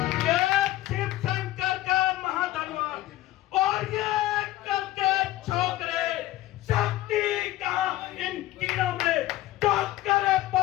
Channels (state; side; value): quieter; right; 15.7 dB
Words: ये शिव शंकर का महाधनवान और ये करके छोकरे शक्ति कहाँ इन कीड़ों में तो करे